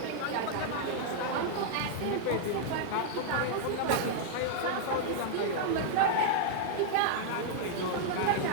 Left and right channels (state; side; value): different; both; correlation -0.01